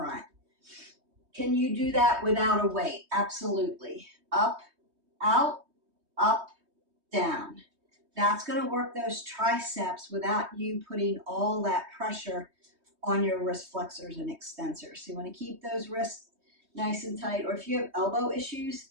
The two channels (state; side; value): late; left; 3.2 ms